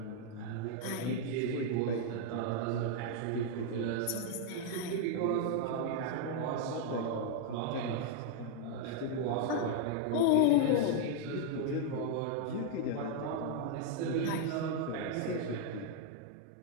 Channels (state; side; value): different; both; correlation 0.00